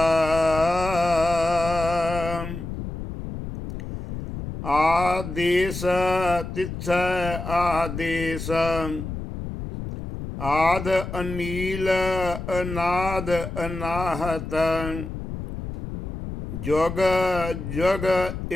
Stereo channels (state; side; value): noise; left; rumble, 7 dB below the sound